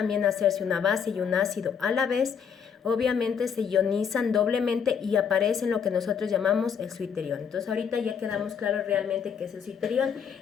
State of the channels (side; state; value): right; quieter; 7.2 dB